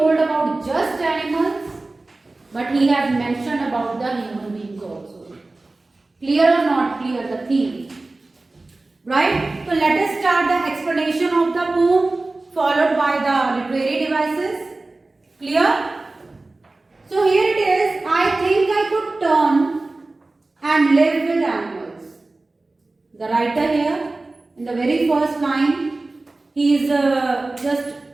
about just animals, but he has mentioned about the human beings also. Clear or not clear the theme? Right? So let us start the explanation of the poem followed by the literary devices. Clear? So here it is. I think I could turn and live with animals. The writer here in the very first line, he is just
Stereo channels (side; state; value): left; quieter; 3.2 dB